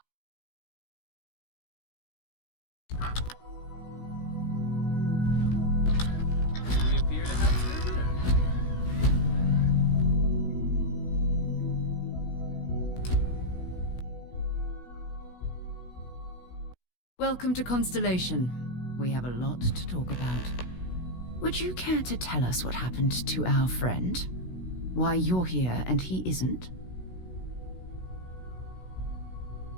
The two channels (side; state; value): right; late; 16 ms